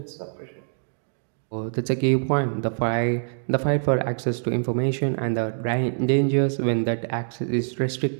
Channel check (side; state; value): left; silent; digital silence